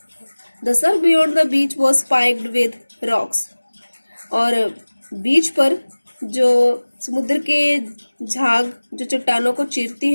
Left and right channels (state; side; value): inverted; both; correlation -1.00